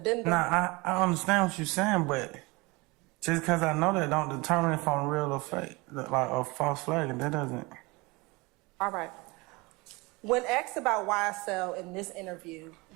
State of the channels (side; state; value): left; quieter; 24.9 dB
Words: Nah, I understand what you're saying, but just because I know that don't determine if I'm real or fake, like a false flag, and that doesn't. All right. When asked about YSL in this interview,